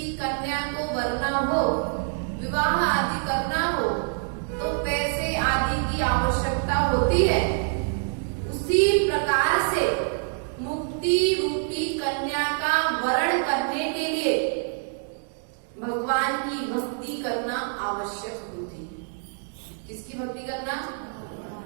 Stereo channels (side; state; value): left; silent; 57 dB below the other